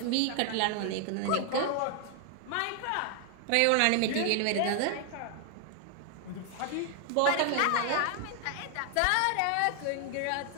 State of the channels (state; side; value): different; both; correlation 0.00